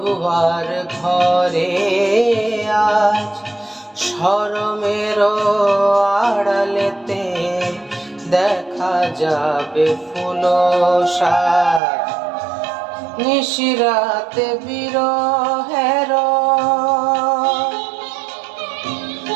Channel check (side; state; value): left; drops out; at 11.8 s